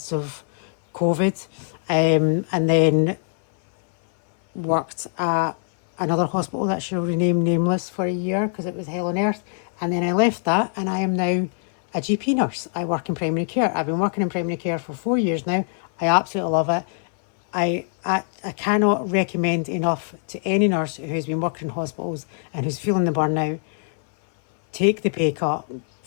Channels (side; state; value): right; silent; 59 dB below the other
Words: of COVID, and then worked at another hospital that shall remain nameless for a year because it was hell on earth, and then I left that and I am now a GP nurse. I work in primary care. I've been working in primary care for 4 years now. I absolutely love it. I cannot recommend enough to any nurse who's been working in hospitals and who's feeling the burnout, take the pay cut